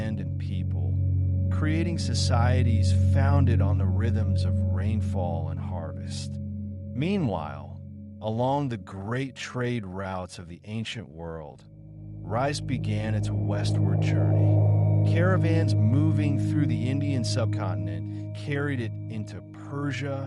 and people, creating societies founded on the rhythms of rainfall and harvest. Meanwhile, along the great trade routes of the ancient world, rice began its westward journey. Caravans moving through the Indian subcontinent carried it into Persia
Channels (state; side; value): identical; both; correlation 1.00